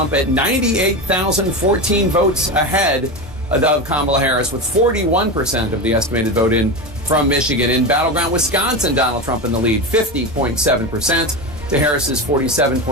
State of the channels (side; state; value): both; normal; correlation 0.20